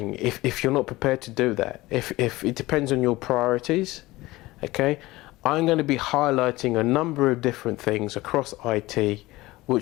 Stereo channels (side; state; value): right; quieter; 19.3 dB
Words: If you're not prepared to do that, if it depends on your priorities, okay, I'm going to be highlighting a number of different things across IT